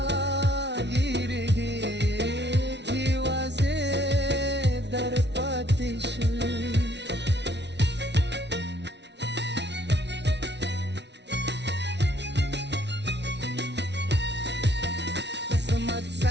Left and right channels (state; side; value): late; left; 0.50 ms